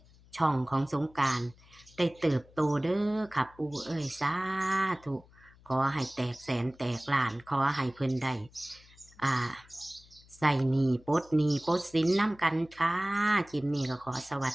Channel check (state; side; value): noise; left; hum, 26 dB below the sound